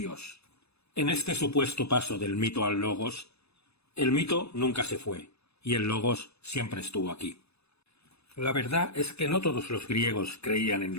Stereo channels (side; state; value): right; late; 0.79 ms